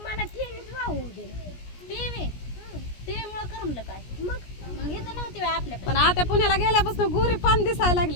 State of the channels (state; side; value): late; right; 17 ms